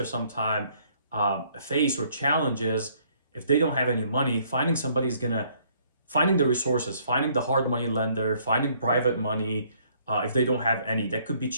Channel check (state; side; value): inverted; both; correlation -0.64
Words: sometimes face or challenges, if they don't have any money, finding the resources, finding the hard money lender, finding private money, if they don't have any, that could be